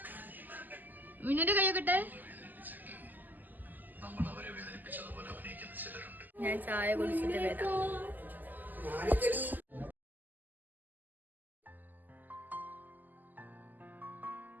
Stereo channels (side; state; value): left; late; 0.085 ms